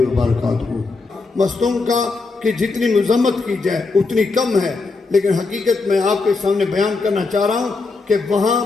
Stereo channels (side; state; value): right; quieter; 3.9 dB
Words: وبرکاتہ۔ مصدوم کا کہ جتنی مذمت کی جائے اتنی کم ہے، لیکن حقیقت میں آپ کے سامنے بیان کرنا چاہ رہا ہوں کہ وہاں